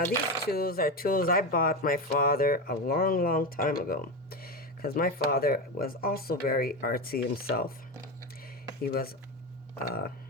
these tools are tools I bought my father a long time ago, because my father was also very artsy himself. He was a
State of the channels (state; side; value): normal; both; correlation 0.17